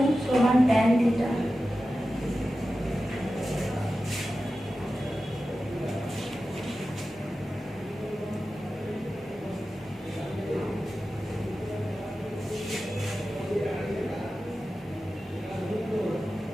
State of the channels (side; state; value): both; normal; correlation 0.93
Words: समान tan थीटा।